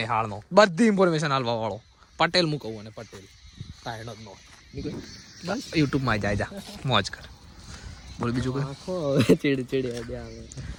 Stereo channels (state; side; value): identical; both; correlation 1.00